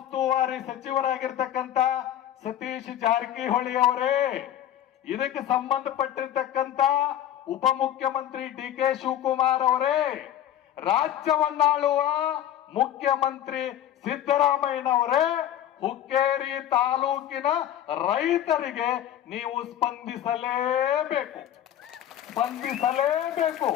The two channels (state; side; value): quieter; right; 11.4 dB